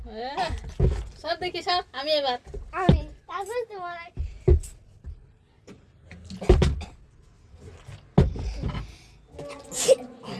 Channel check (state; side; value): identical; both; correlation 1.00